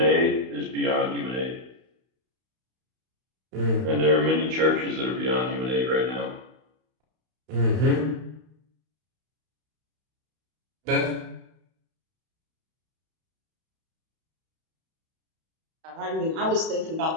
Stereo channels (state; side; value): late; left; 31 ms